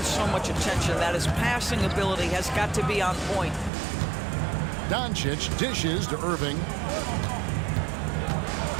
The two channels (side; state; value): left; drops out; at 3.7 s